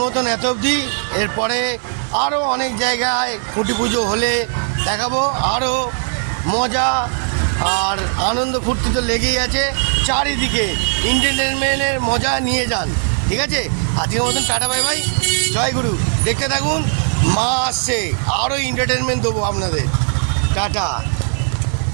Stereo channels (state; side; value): silent; left; digital silence